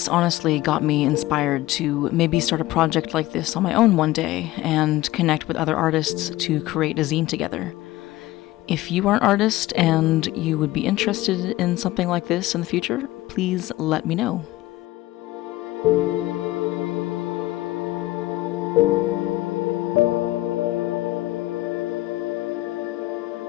honestly got me inspired to maybe start a project like this on my own one day and connect with other artists to create a zine together. If you are an artist and you would be interested in something like this in the future, please let me know.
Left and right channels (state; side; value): quieter; right; 17.2 dB